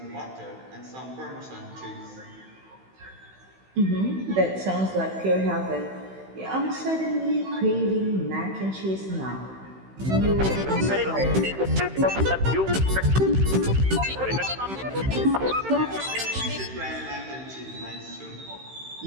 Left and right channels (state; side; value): late; left; 16 ms